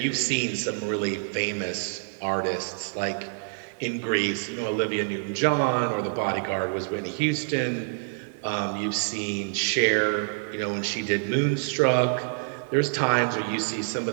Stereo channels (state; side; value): silent; left; digital silence